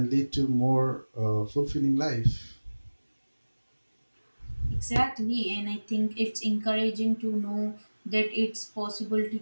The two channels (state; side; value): inverted; both; correlation -1.00